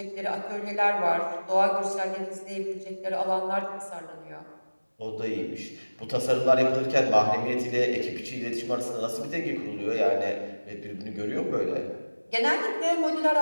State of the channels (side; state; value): both; inverted; correlation -1.00